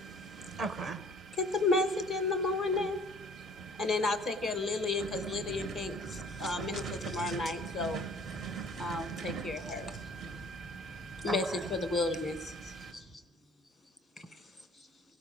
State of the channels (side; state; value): both; normal; correlation 0.53